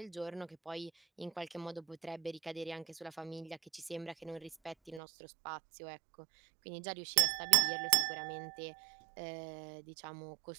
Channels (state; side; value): drops out; left; at 5.0 s